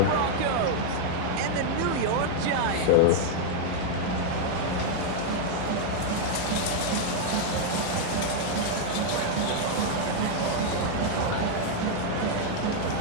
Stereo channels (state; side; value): different; both; correlation 0.00